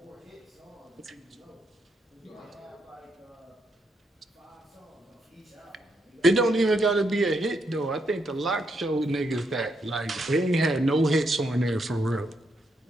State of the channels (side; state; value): both; normal; correlation 0.78